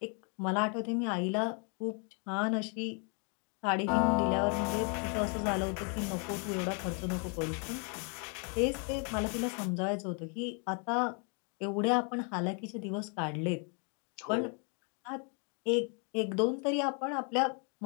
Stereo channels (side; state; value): right; quieter; 38.9 dB